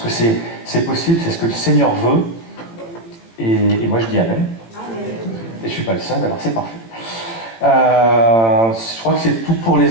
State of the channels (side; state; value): right; late; 18 ms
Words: c'est possible, c'est ce que le Seigneur veut. Et moi je dis Amen. Et je suis pas le seul, alors c'est parfait. Je crois que c'est tout pour